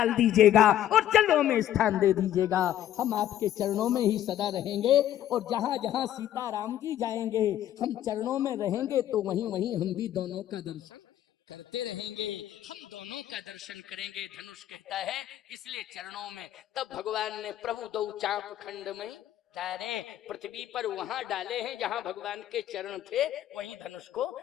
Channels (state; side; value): quieter; right; 12.0 dB